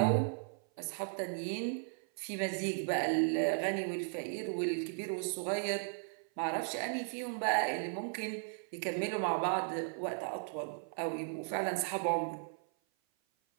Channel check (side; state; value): left; silent; 54 dB below the other